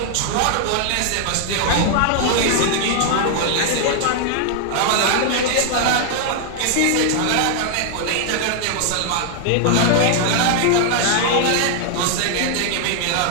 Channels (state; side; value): different; both; correlation 0.00